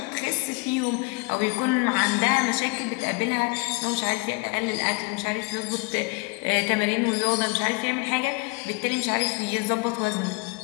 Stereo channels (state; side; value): quieter; right; 29.0 dB